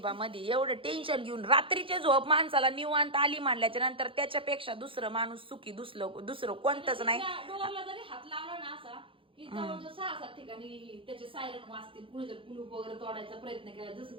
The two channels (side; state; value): left; late; 0.25 ms